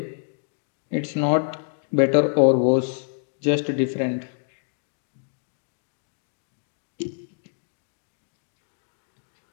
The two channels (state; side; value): silent; right; digital silence